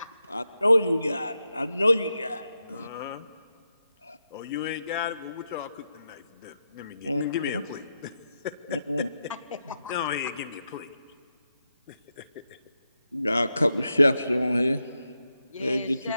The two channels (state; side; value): inverted; both; correlation -0.87